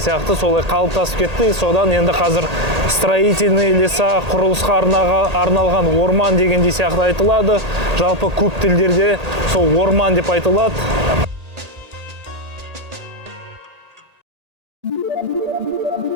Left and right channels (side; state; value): left; late; 1.8 ms